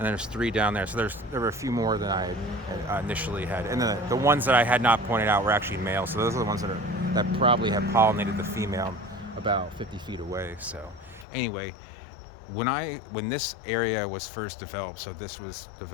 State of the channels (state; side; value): drops out; right; at 11.2 s